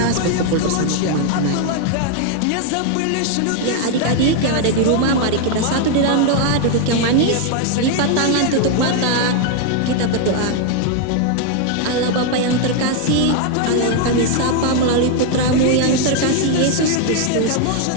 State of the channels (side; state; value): both; different; correlation 0.01